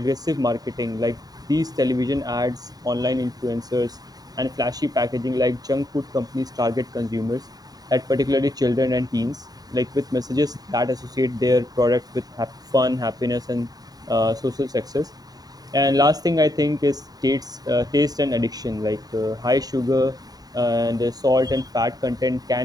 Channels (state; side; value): late; left; 0.18 ms